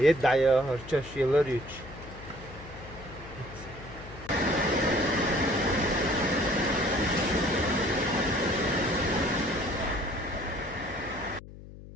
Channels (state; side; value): noise; left; hum, 16 dB below the sound